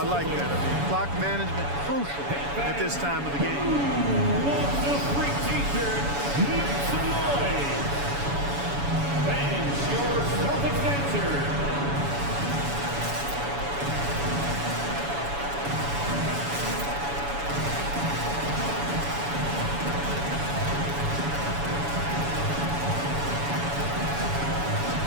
like that. Clock management crucial at this time of the game. What's the free t-shirt? Make some noise. Fans, your Celtics answer.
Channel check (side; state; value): left; late; 7.1 ms